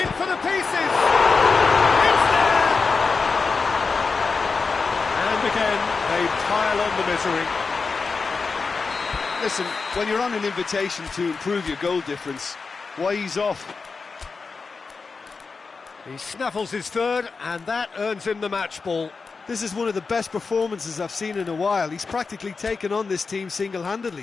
in for the pieces! It's there! And again, they pile on the misery. Listen, when you're on an invitation to improve your goal difference, why ease off? He snaffles his third, and that earns him the match ball. This is one of the best performances I've seen in a while. He's practically taken on this team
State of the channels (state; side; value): quieter; right; 4.6 dB